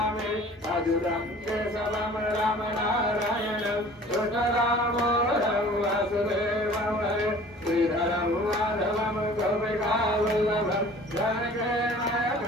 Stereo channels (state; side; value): normal; both; correlation 0.47